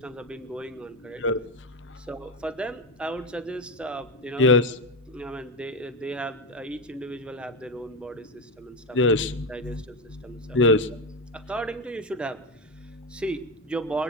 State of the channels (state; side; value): normal; both; correlation 0.14